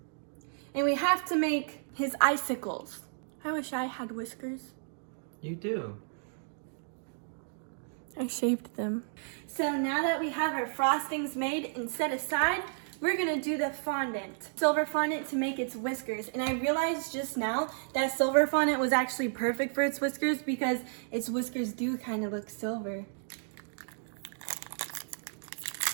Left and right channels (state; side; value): silent; left; digital silence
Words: and we have to make his icicles. I wish I had whiskers. You do. I shaved them. So now that we have our frostings made and set aside, we're gonna do the fondant. Silver fondant to make its whiskers. And I realized just now that silver fondant was actually perfect for its whiskers because its whiskers do kind of look silver.